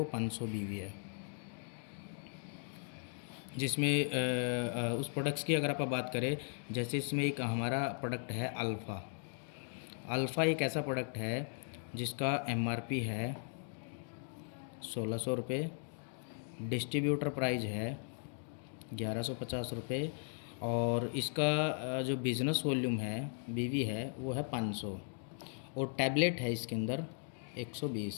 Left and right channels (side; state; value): right; silent; 53 dB below the other